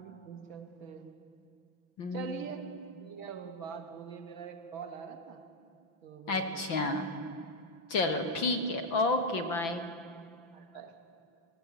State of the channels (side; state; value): right; late; 6.0 ms